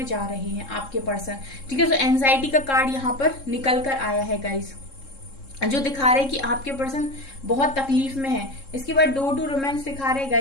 जा रहे हैं आपके पर्सन। ठीक है, तो एंजाइटी का कार्ड यहाँ पर निकल कर आया है गाइस, जो दिखा रहे हैं कि आपके पर्सन बहुत तकलीफ में है। इसके बाद डोर टू रोमांस दिखा रहे हैं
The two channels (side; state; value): right; late; 3.7 ms